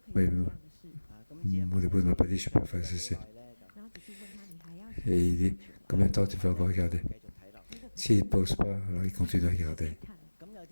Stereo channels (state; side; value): inverted; both; correlation -1.00